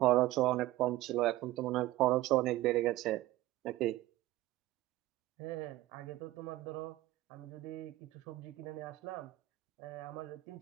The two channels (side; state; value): left; quieter; 16.7 dB